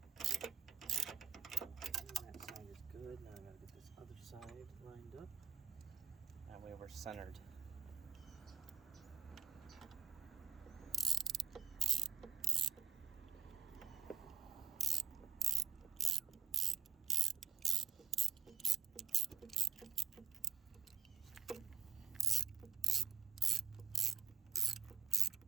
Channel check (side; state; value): left; quieter; 7.0 dB